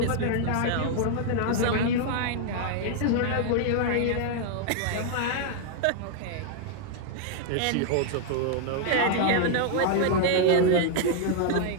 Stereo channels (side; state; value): both; different; correlation 0.00